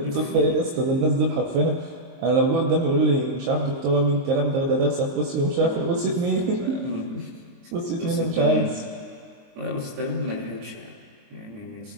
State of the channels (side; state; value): left; late; 23 ms